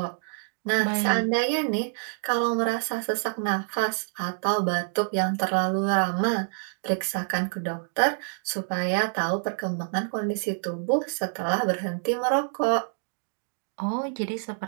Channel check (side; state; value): left; silent; digital silence